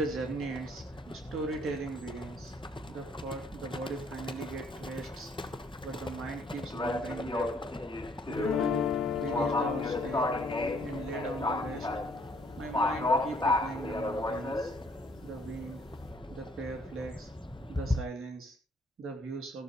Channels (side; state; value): both; normal; correlation 0.63